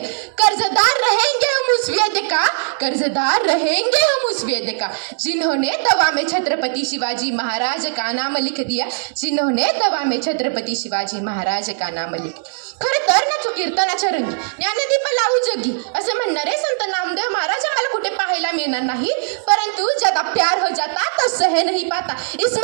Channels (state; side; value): silent; left; digital silence